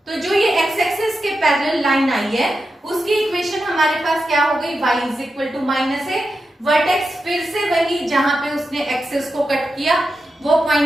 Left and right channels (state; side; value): normal; both; correlation 0.89